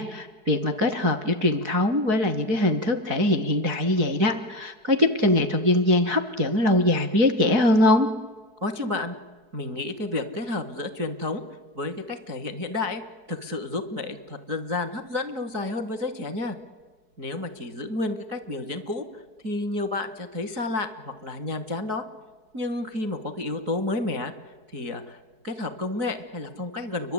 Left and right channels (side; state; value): left; late; 4.7 ms